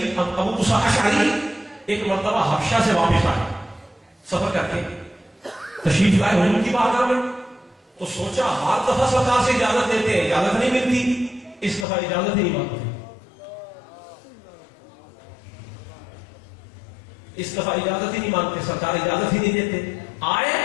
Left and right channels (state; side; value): drops out; right; at 11.9 s